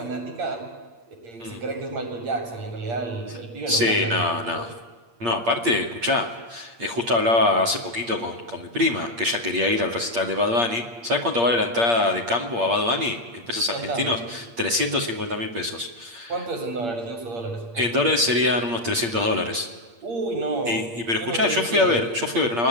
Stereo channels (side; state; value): left; late; 8.6 ms